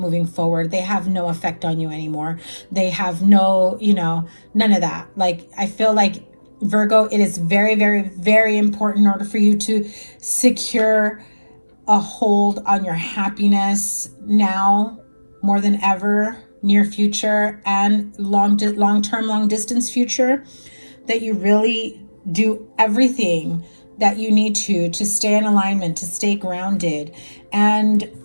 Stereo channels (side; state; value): both; inverted; correlation -1.00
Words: forward. They have no effect on you anymore. They have no, you know, none of that. Like, I feel like Virgo, it is very, very, very important in order for you to secure a hold on your happiness now more than ever, near future and long-term, long-distance future, that you really do everything that you need to stay in alignment, to stay grounded. And,